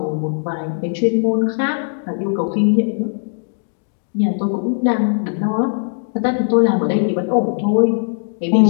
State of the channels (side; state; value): right; silent; digital silence